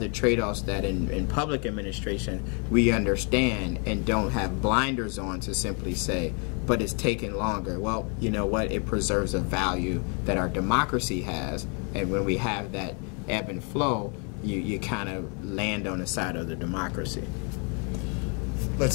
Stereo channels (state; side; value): quieter; right; 36.5 dB